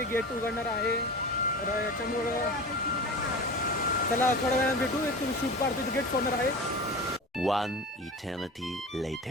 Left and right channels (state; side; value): normal; both; correlation 0.32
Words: गेट उघडणार आहे. तर याच्यामुळं चला थोड्या वेळाने भेटू. एक तुम्ही शूट पाडतो गेट सोडणार आहे. One eternity